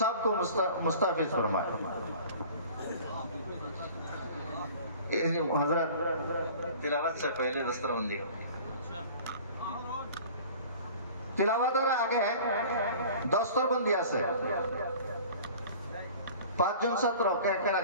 मुस्ताफिज फरमाए। हजरत तिलावत से पहले दस्तरबंदी तिलावतर आगे दस्तरबंदी আছে পাঁচজন ছাত্র কেন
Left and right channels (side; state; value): both; inverted; correlation -0.44